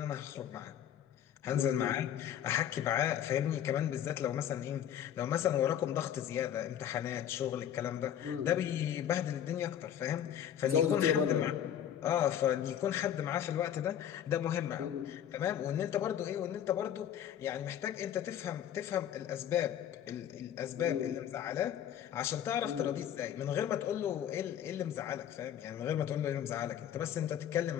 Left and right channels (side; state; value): right; quieter; 10.0 dB